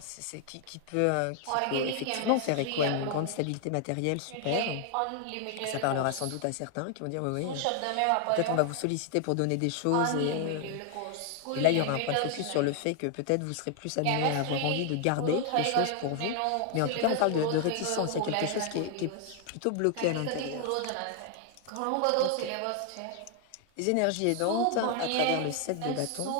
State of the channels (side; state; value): both; different; correlation 0.00